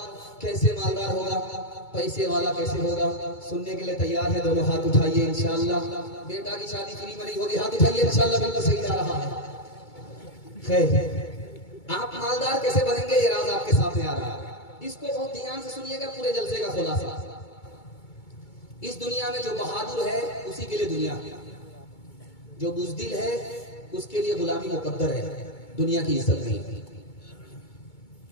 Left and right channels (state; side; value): late; right; 2.2 ms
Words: کیسے مالدار ہوگا، پیسے والا کیسے ہوگا، سننے کے لیے تیار ہے؟ دونوں ہاتھ اٹھائیے انشاءاللہ. بیٹا کی شادی فری میں نہیں ہوگی، ہاتھ اٹھائیے انشاءاللہ، بالکل صحیح جا رہا ہے. خیر، آپ مالدار کیسے بنیں گے یہ راز آپ کے سامنے آ رہا ہے. اس کو بہت دھیان سے سنیے گا، پورے جلسے کا خلاصہ. اس دنیا میں جو بہادر ہے اسی کے لیے دنیا، جو بزدل ہے اس کے لیے غلامی مقدر ہے، دنیا کی عزت نہیں.